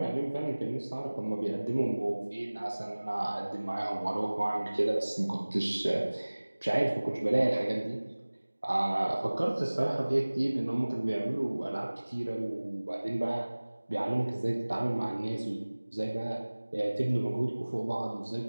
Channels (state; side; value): inverted; both; correlation -1.00